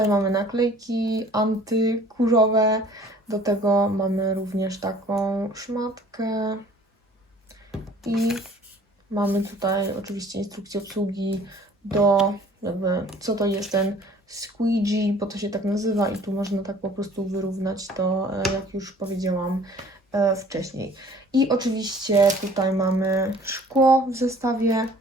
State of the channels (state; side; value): normal; both; correlation 0.52